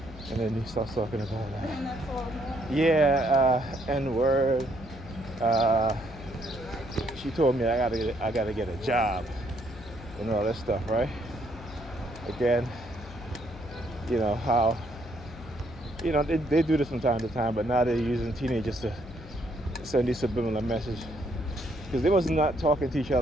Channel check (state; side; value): noise; left; hum, 16 dB below the sound